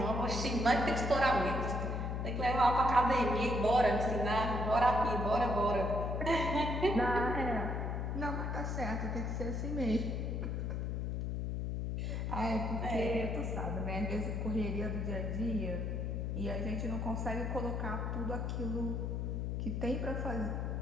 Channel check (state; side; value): noise; left; hum, 1 dB below the sound